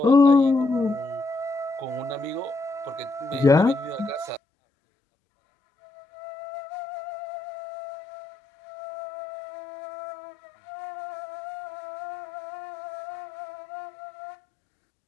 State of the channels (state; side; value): drops out; right; at 4.4 s